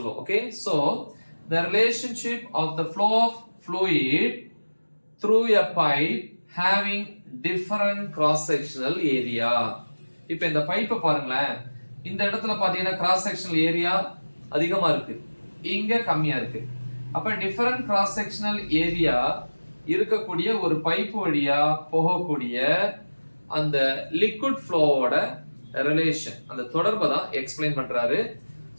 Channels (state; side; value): inverted; both; correlation -1.00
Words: Okay, so the relationship of the flow of fluid through a pipe having different cross sectional area. இப்போ இந்த பைப்பை பாருங்களேன், இந்த இடத்துல பாத்தீங்கன்னா கிராஸ் செக்ஷனல் ஏரியா அதிகமா இருக்கு, இங்க கம்மியா இருக்கு. அப்ப டிஃபரண்ட் கிராஸ் செக்ஷனல் ஏரியா இருக்கக்கூடிய ஒரு பைப் வழியா போகக்கூடிய அந்த லிக்விட் ஃப்ளோவோட ரிலேஷன், அந்த தொடர்பை தான் எக்ஸ்பிளைன் பண்றாரு.